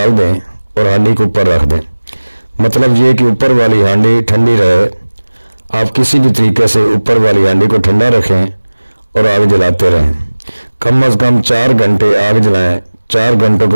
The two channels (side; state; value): both; inverted; correlation -1.00